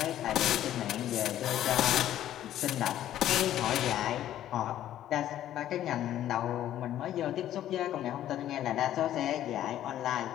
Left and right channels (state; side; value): quieter; right; 12.1 dB